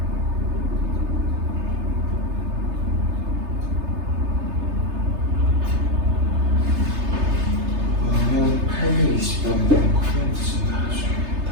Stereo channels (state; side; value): late; left; 3.3 ms